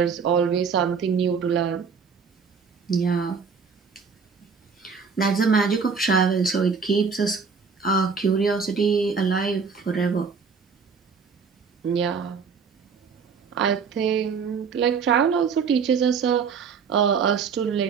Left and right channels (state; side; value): quieter; left; 5.7 dB